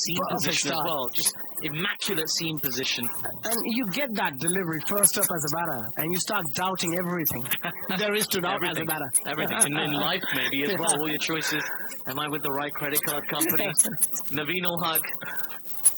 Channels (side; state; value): both; identical; correlation 1.00